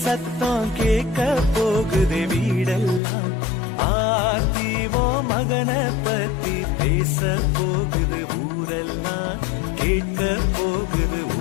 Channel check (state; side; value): drops out; right; at 3.0 s